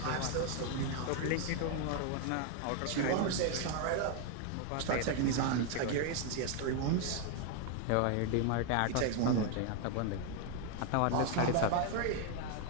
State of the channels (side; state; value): both; different; correlation 0.01